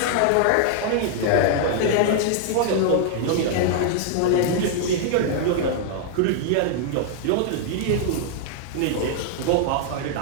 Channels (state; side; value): different; both; correlation -0.01